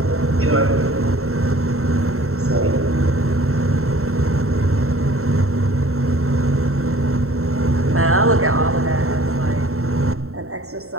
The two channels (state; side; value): late; left; 0.63 ms